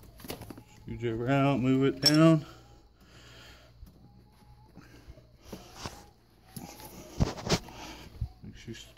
Screwdriver out, move it down. Make sure it's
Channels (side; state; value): both; identical; correlation 1.00